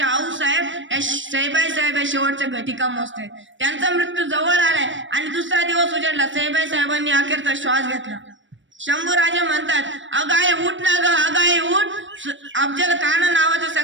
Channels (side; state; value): left; late; 0.55 ms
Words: आऊसाहेब या सईबाई या शेवटच्या घटिका मोजतात. त्यांचा मृत्यू जवळ आलाय आणि दुसरा दिवस उजाडला. सईबाई साहेबांनी अखेरचा श्वास घेतला. शंभू राजा म्हणतात, अगाई उठ ना ग, अगाई उठ. अफजल खान नावाचं